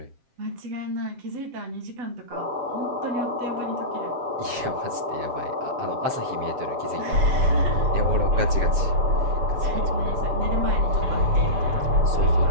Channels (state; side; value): late; left; 7.4 ms